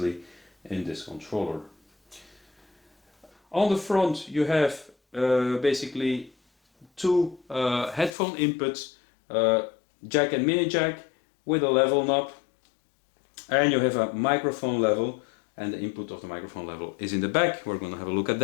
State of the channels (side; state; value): right; drops out; at 8.1 s